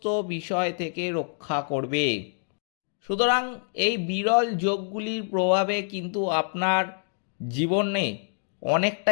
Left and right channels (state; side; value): silent; right; 57 dB below the other